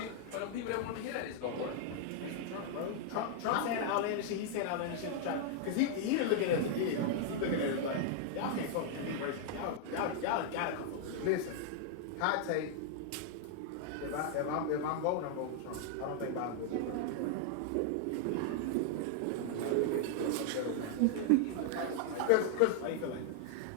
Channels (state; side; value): different; both; correlation 0.00